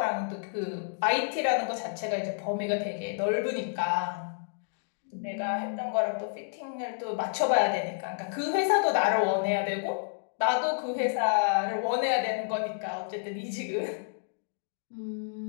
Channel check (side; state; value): right; silent; digital silence